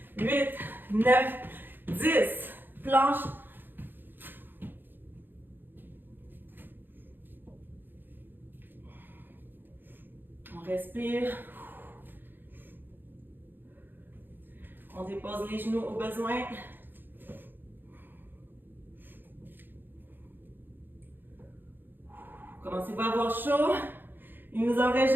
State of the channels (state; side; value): late; left; 0.095 ms